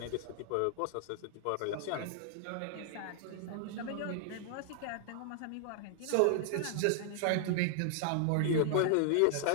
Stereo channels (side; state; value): both; different; correlation -0.01